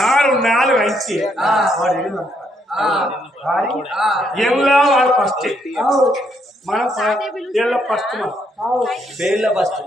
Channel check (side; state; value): both; normal; correlation 0.74